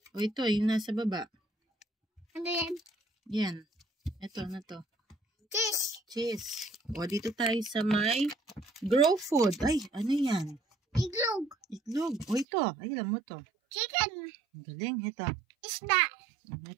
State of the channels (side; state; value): left; drops out; at 12.5 s